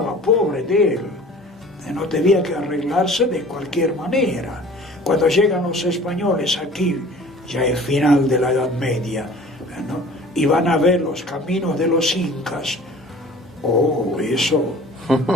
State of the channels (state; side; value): normal; both; correlation 0.46